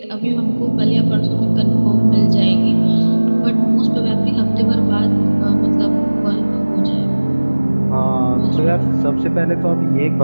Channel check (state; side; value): inverted; both; correlation -1.00